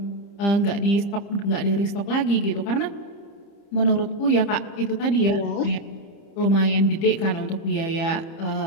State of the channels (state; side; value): late; right; 30 ms